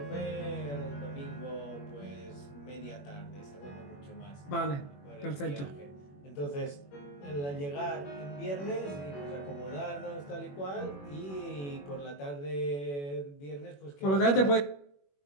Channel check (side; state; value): right; late; 21 ms